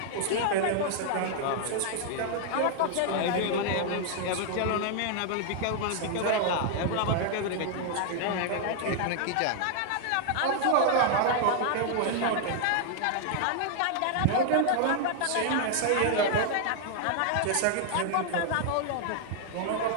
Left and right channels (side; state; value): both; different; correlation 0.00